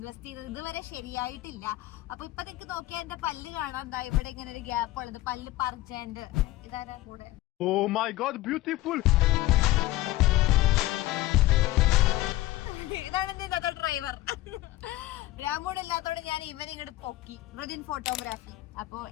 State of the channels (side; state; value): right; quieter; 17.1 dB